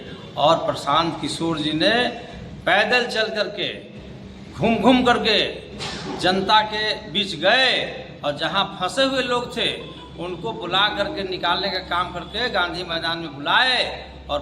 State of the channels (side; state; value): both; identical; correlation 1.00